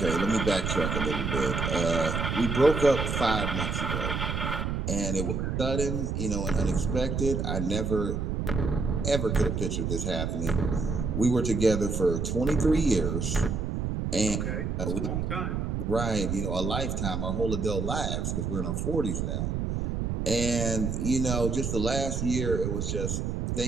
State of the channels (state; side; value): noise; right; rumble, 1 dB below the sound